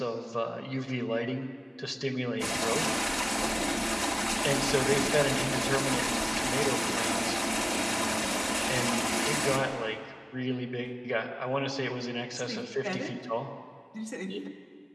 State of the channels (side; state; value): both; identical; correlation 1.00